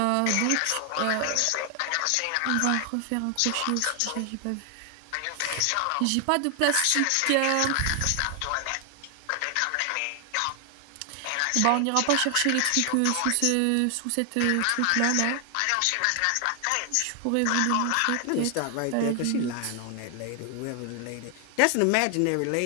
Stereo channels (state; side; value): different; both; correlation 0.00